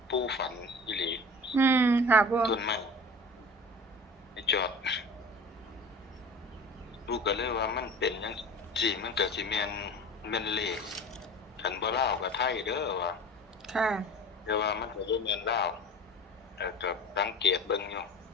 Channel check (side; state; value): both; normal; correlation 0.38